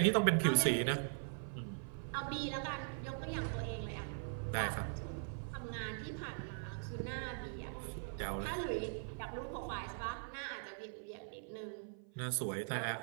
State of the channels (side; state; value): left; silent; 50 dB below the other